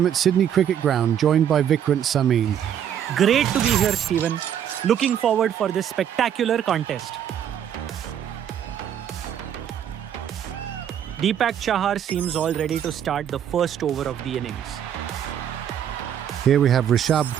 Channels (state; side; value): quieter; left; 9.4 dB